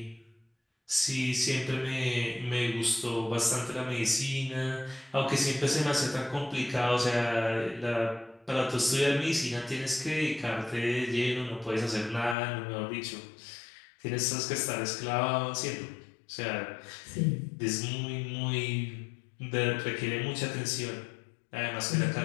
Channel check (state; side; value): drops out; right; at 12.4 s